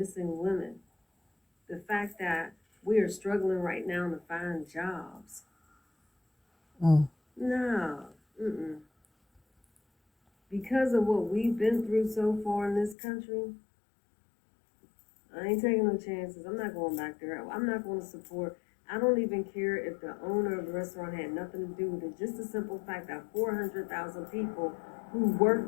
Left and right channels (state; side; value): drops out; right; at 13.0 s